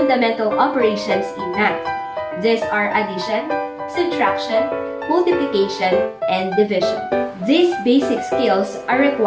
operations in math. These are addition, subtraction, multiplication, and division. These basic skills are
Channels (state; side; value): identical; both; correlation 1.00